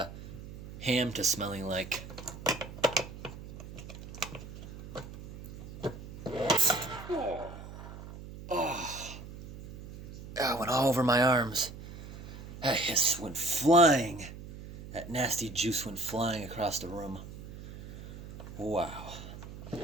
ham to smelling like. Oh, it went all over my arms. That hiss went flying. That nasty juice went flying across the room. Wow.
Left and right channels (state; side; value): noise; right; hum, 13 dB below the sound